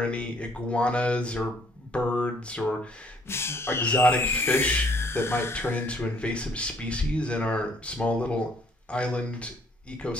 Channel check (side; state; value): both; normal; correlation 0.63